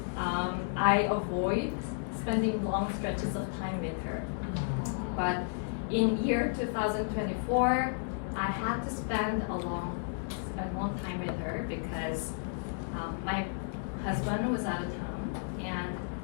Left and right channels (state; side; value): silent; right; digital silence